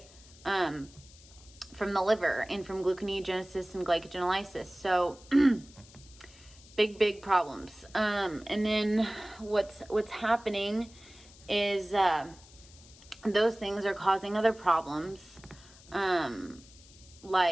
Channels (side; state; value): left; noise; hiss, 23 dB below the sound